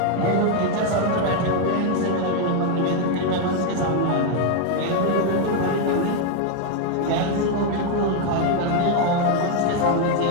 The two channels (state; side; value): different; both; correlation 0.01